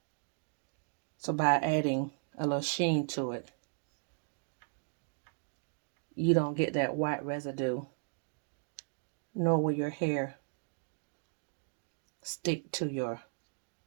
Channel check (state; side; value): silent; left; 54 dB below the other